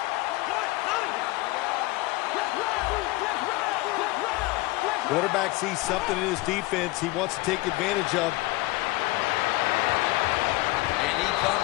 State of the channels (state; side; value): quieter; right; 20.5 dB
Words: Quarterback sees something in his defense he wants to take advantage of. And he